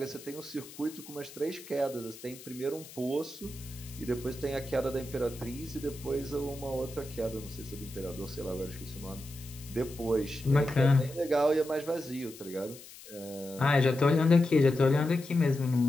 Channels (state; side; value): noise; left; hiss, 17 dB below the sound